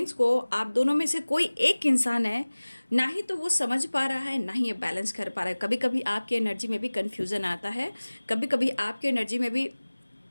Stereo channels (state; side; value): inverted; both; correlation -1.00